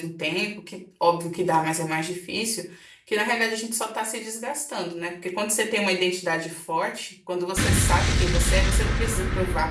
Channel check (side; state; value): both; identical; correlation 1.00